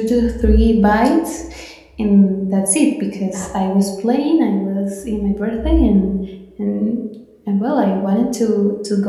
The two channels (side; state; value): both; identical; correlation 1.00